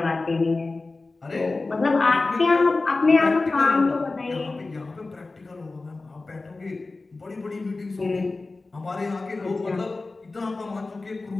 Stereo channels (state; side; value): quieter; right; 3.5 dB